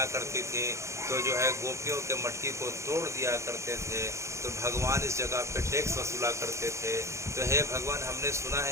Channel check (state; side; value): late; left; 0.14 ms